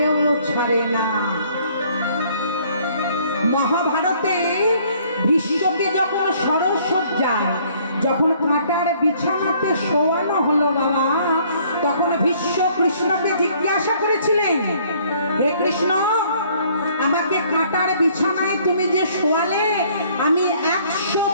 ছাড়ে না। মহাভারতে ভীষ্মকে যখন সরসজ্জায়, যখন কাঁটার বিছানাতে শোয়ানো হলো বাবা, তখন ভীষ্ম কৃষ্ণকে জিজ্ঞাসা করেছিলেন, হে কৃষ্ণ, আমাকে কাঁটার বিছানায় তুমি যে শোয়ালে, আমি 100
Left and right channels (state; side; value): inverted; both; correlation -0.60